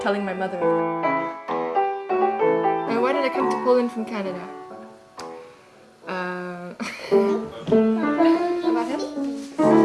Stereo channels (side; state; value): both; identical; correlation 1.00